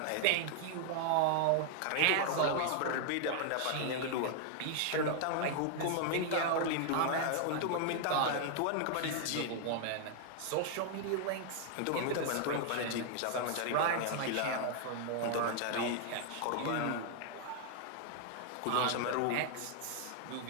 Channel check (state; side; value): different; both; correlation 0.00